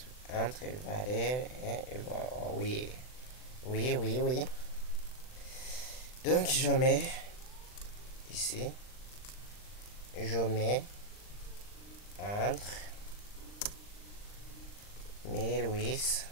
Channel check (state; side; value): late; right; 39 ms